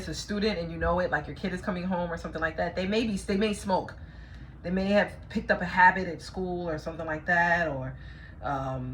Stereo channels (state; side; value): identical; both; correlation 1.00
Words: a student and you know it, like your kid is coming home or something like that, they may smoke. They may have picked up a habit at school or something like that, or